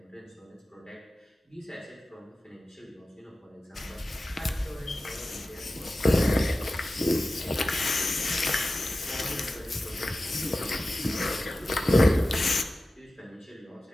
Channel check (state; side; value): normal; both; correlation 0.95